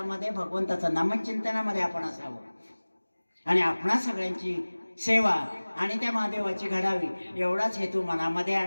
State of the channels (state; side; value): inverted; both; correlation -1.00